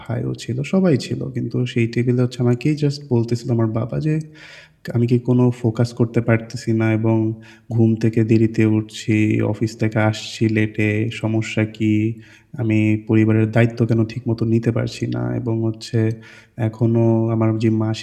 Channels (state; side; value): identical; both; correlation 1.00